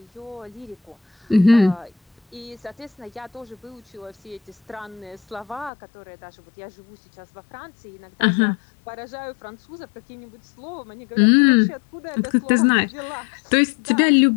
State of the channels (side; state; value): right; drops out; at 5.7 s